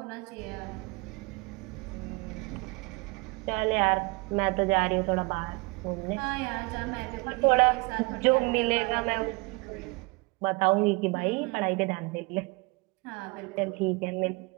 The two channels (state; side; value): quieter; left; 27.3 dB